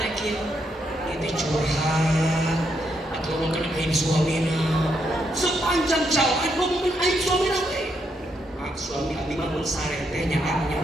itu curhat atau ngomongin aib suamina sepanjang jalan ngomongin aib suamina suami abdi mah mun saretenya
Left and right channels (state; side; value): normal; both; correlation 0.78